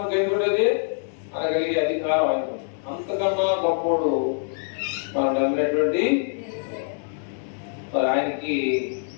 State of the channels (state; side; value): silent; right; digital silence